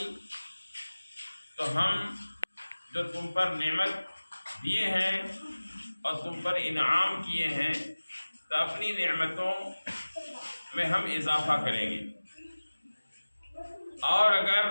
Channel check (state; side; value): inverted; both; correlation -1.00